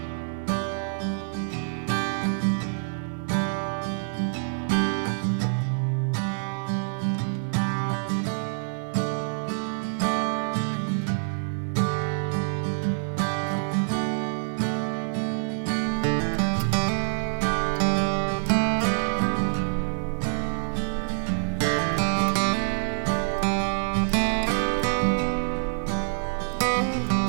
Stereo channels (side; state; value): left; silent; digital silence